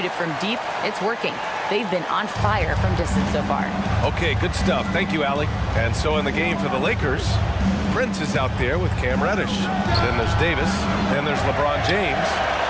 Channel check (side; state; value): both; identical; correlation 1.00